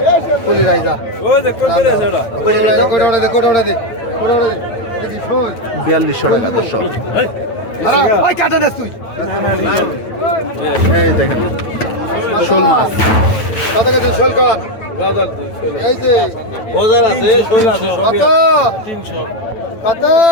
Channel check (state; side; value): late; right; 9.0 ms